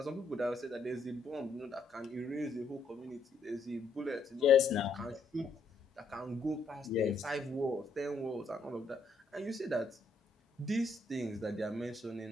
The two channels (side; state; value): right; quieter; 3.4 dB